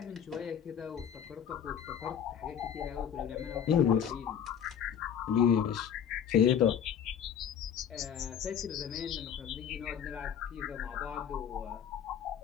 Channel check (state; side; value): quieter; right; 8.6 dB